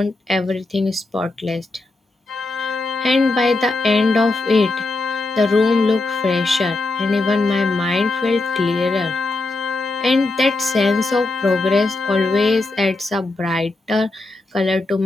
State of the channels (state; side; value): quieter; right; 3.1 dB